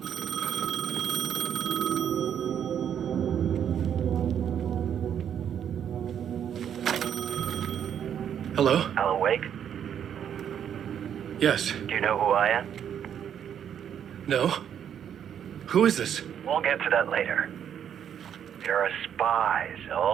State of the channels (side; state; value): left; quieter; 9.0 dB